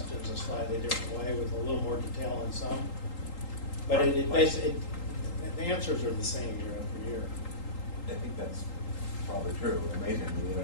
a slightly different way with a little more detail on some. But the answers are the same year after year. I think that's probably true. Amazingly, I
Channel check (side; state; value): right; late; 3.8 ms